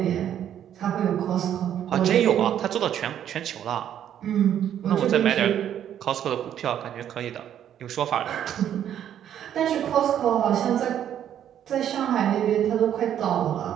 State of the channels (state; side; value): quieter; left; 10.2 dB